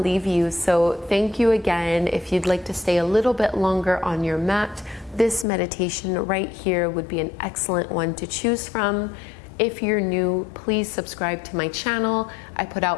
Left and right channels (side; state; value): right; drops out; at 5.5 s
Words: you. So thank you again. If you'd like to stay a little bit longer on your mat, this meditation right here would be an excellent one to choose from. If you're new, please subscribe to my channel. I put